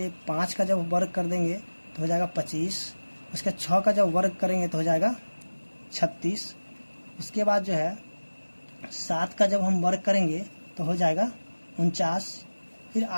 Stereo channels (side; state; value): both; inverted; correlation -1.00